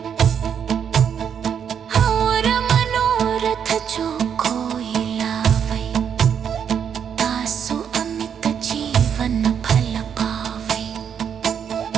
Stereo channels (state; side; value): quieter; left; 7.9 dB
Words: और मनोरथ जो कोई लावै तासु अमित जीवन फल पावै